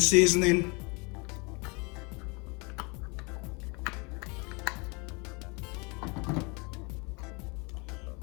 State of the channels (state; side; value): quieter; right; 29.7 dB